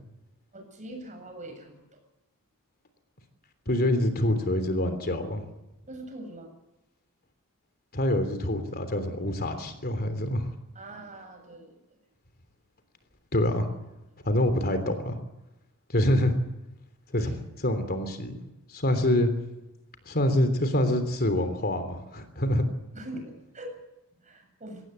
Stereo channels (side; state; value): both; normal; correlation 0.56